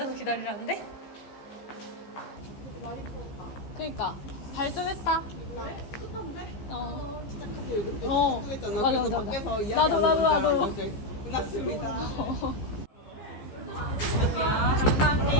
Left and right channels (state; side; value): late; right; 15 ms